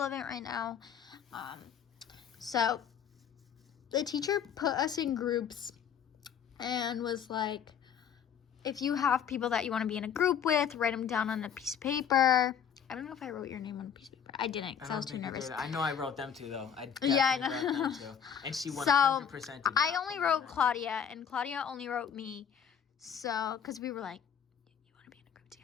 right now. So the teacher put us in groups and was like, if you have people that you want to be in a group with, write them down on a piece of paper. I don't know if I wrote your name on a piece of paper. I didn't because I was too nervous. I know I wrote them too, though. I Yeah, I definitely know. wrote them too. And she 100% So did I not only put wrote them. Claudia, and Claudia only wrote me. So, because we were like, you want to be in a group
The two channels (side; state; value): right; quieter; 8.0 dB